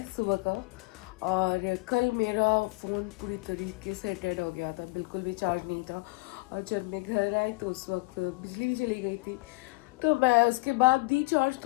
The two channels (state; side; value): quieter; right; 25.7 dB